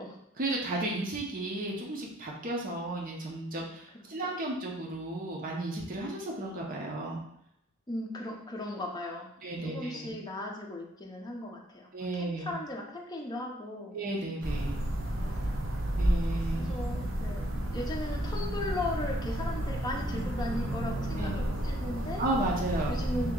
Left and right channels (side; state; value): both; normal; correlation 0.65